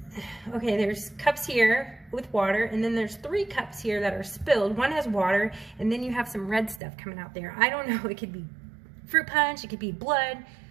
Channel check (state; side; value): drops out; left; at 6.8 s